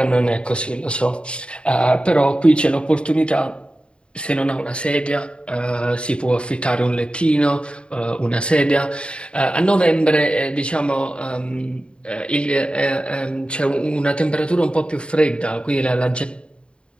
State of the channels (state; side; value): late; right; 0.055 ms